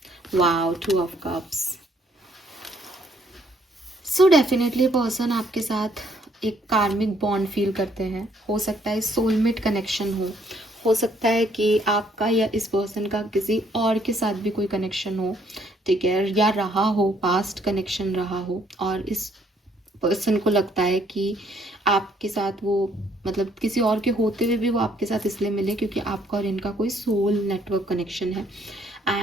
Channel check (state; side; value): normal; both; correlation 0.67